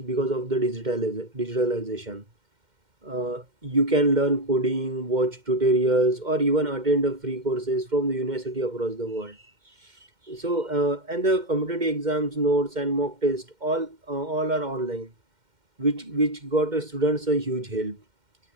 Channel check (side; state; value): left; late; 2.1 ms